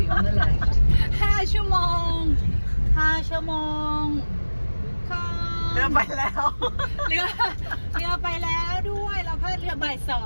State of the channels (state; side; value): inverted; both; correlation -1.00